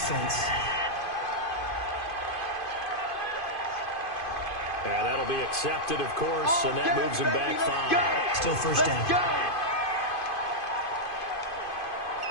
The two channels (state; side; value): late; right; 2.5 ms